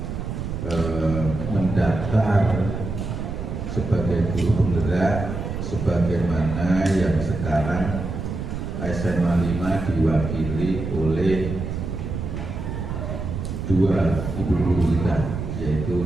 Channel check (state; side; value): noise; right; rumble, 5 dB below the sound